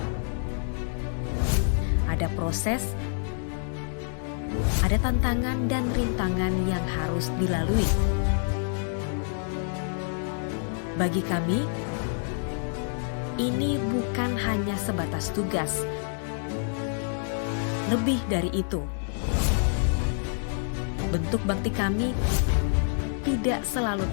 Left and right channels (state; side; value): silent; right; digital silence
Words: Ada proses, ada tantangan dan rintangan yang harus dilalui. Bagi kami, ini bukan hanya sebatas tugas. Lebih dari itu, bentuk bakti kami tidak selalu